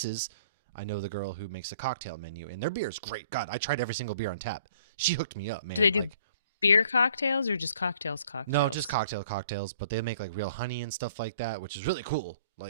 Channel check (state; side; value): inverted; both; correlation -0.58